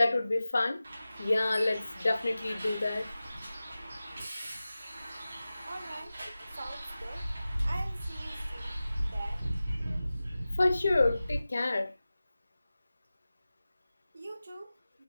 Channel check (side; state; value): both; inverted; correlation -0.96